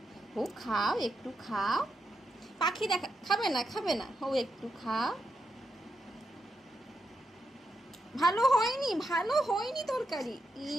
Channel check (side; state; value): both; normal; correlation 0.85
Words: ও খাও, একটু খাও। পাখি দেখা খাবে না, খাবে না, ও একটু খাও। ভালো হয়নি, ভালো হয়নি তরকারি।